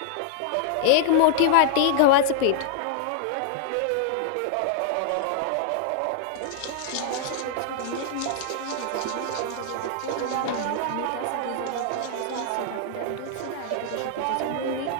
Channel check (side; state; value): both; different; correlation -0.01